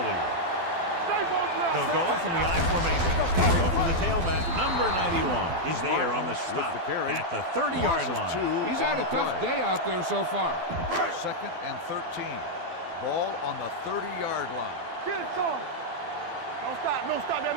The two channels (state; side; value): late; left; 12 ms